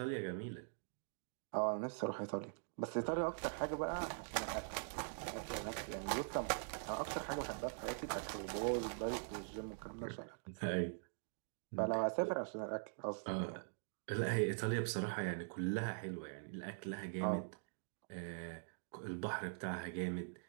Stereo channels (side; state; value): left; silent; digital silence